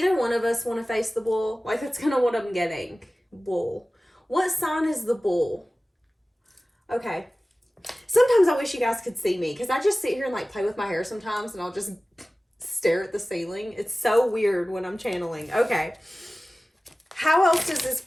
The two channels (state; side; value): normal; both; correlation 0.97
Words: one of us want to face the bull? Like, that's kind of what I'm getting. Bull. What sign is the bull? Okay. Sometimes I wish you guys could see me, because I just sit here and like play with my hair sometimes, and I'll just stare at the ceiling. It's so weird when I'm channeling. Okay. How else does this